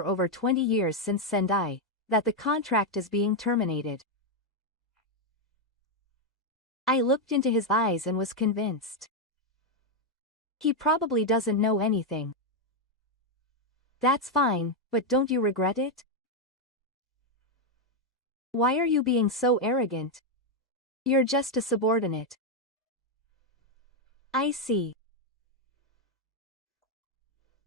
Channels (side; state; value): both; normal; correlation 0.02